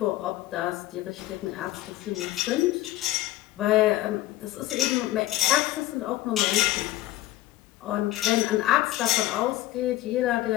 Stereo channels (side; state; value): right; quieter; 16.1 dB